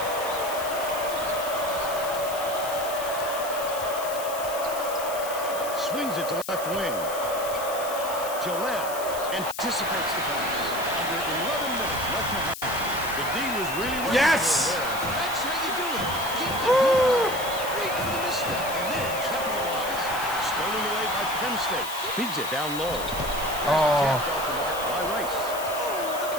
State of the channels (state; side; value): noise; left; hiss, 10 dB below the sound